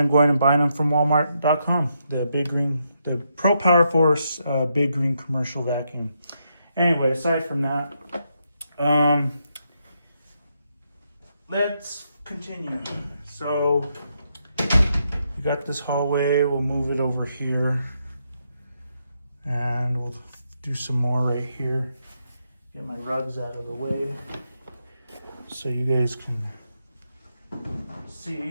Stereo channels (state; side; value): inverted; both; correlation -0.80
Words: going and buying them from Walmart.com. The Pro PowerForce Big Green Commercial Vacuum. Anyway, aside from that, let's continue. So you got this hallway, we'll move it over here, and we'll do some more right here. Get my rugs out of the way so you guys can